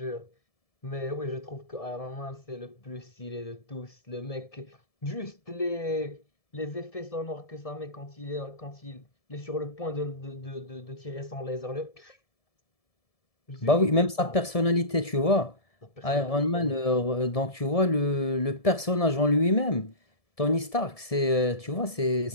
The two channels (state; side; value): late; right; 1.7 ms